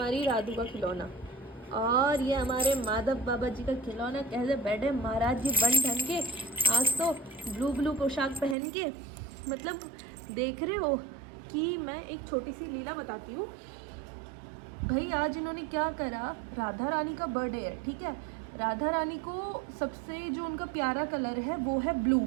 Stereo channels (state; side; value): drops out; left; at 8.6 s